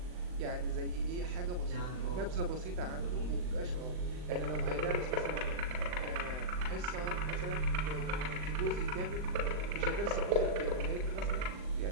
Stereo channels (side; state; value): left; late; 39 ms